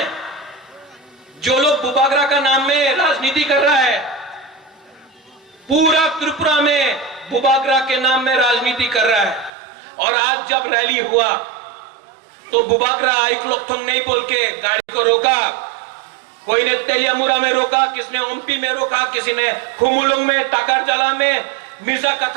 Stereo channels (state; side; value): drops out; left; at 9.5 s